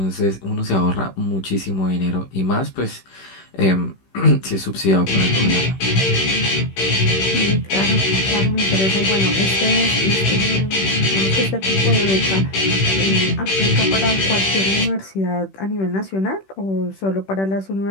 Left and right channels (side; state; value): right; late; 16 ms